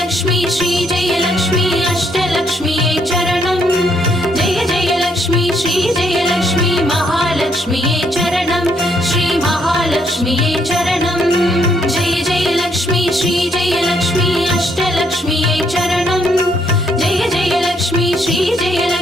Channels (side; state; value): both; normal; correlation 0.71